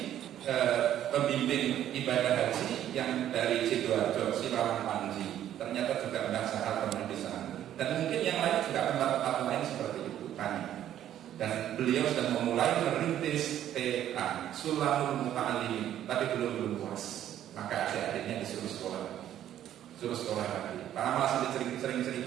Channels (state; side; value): quieter; left; 11.4 dB